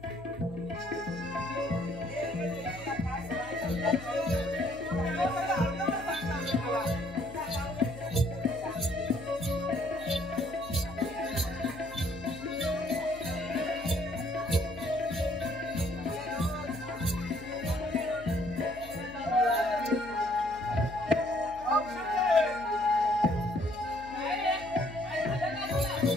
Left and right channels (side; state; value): left; noise; hum, 19 dB below the sound